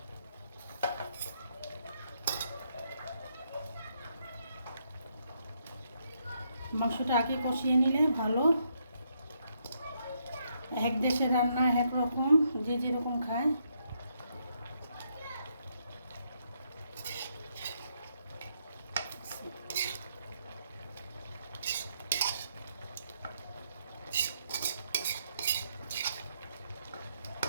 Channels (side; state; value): both; inverted; correlation -0.76